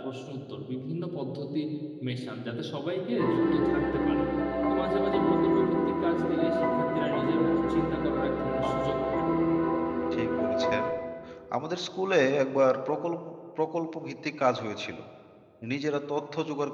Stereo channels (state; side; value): identical; both; correlation 1.00